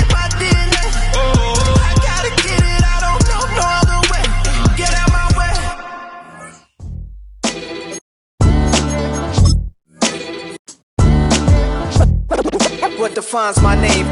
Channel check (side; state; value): both; identical; correlation 1.00